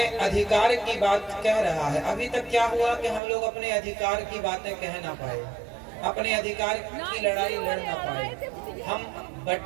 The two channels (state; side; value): drops out; left; at 3.2 s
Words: अधिकार की बात कह रहा है। अभी तक क्या हुआ कि हम लोग अपने अधिकार की बातें कह ना पाए, अपने अधिकार की लड़ाई लड़ ना पाए, हम